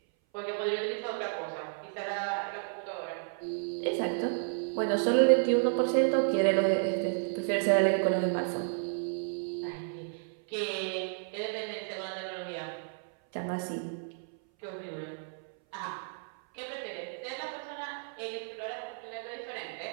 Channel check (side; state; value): left; silent; 56 dB below the other